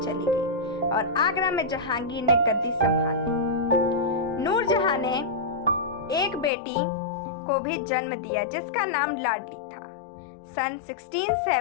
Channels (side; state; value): right; drops out; at 6.5 s